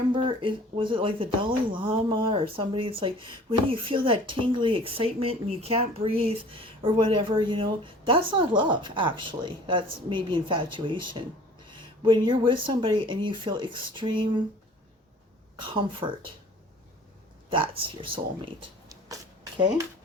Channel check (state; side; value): normal; both; correlation 0.48